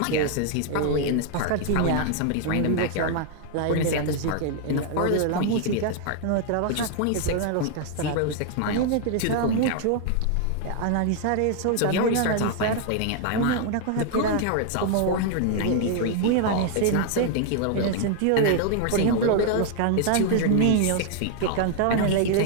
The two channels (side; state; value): both; different; correlation 0.00